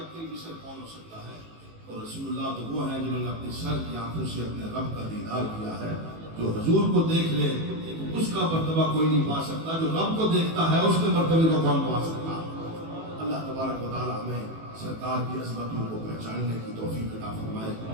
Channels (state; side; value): late; left; 18 ms